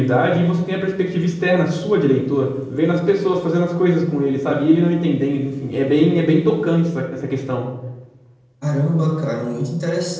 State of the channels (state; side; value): identical; both; correlation 1.00